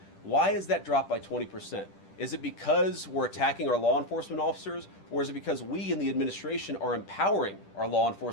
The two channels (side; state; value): right; late; 10 ms